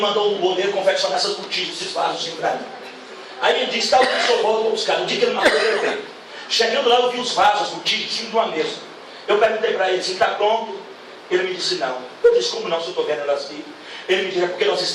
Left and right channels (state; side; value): identical; both; correlation 1.00